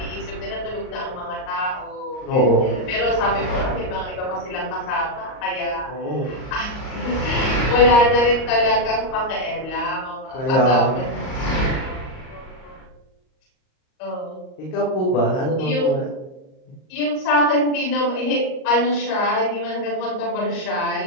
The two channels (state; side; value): late; right; 38 ms